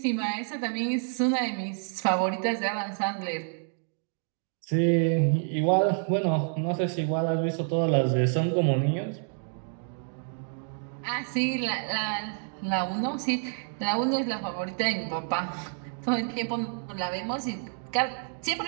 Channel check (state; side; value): silent; left; 56 dB below the other